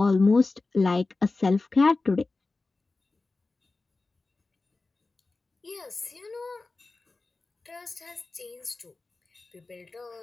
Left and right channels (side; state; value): right; quieter; 3.6 dB